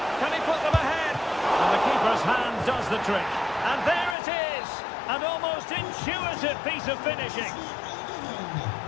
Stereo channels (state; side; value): drops out; right; at 4.2 s